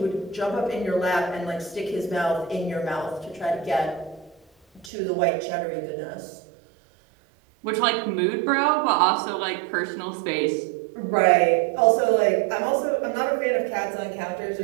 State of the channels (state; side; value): drops out; left; at 4.9 s